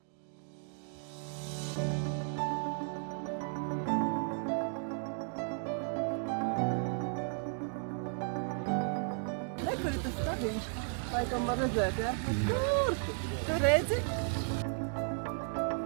Kur ir tas stabiņš? Laikam var redzēt, ja? Kur? Tu redzi?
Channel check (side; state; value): left; silent; 55 dB below the other